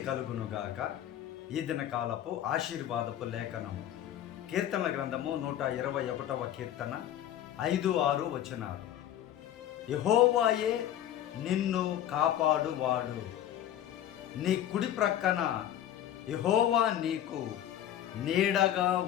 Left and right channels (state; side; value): quieter; right; 11.4 dB